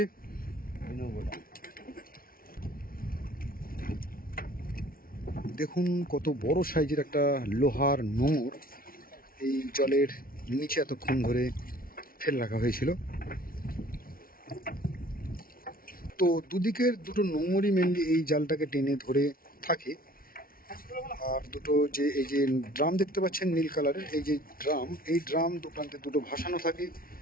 দেখুন কত বড় সাইজের একটা লোহার নোঙর এই জলের নিচে এতক্ষণ ধরে ফেলে রাখা হয়েছিল। তো দুদিকের দুটো নোঙরই মেনলি এই জালটাকে টেনে ধরে থাকে। আর দুটো যে এই যে ড্রাম দেখতে পাচ্ছেন নীল কালারের, এই যে ড্রাম, এই ড্রাম দু প্রান্তে দুটো ভাসানো থাকে,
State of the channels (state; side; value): late; right; 0.43 ms